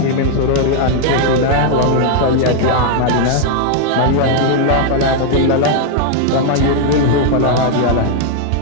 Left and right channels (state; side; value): different; both; correlation 0.00